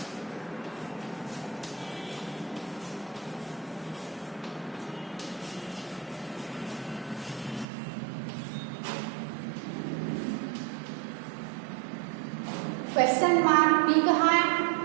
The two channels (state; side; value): drops out; left; at 7.7 s